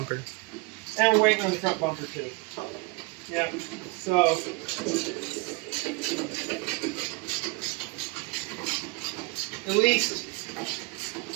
And we're waiting on the front bumper too. Yeah, so at least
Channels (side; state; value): left; quieter; 26.4 dB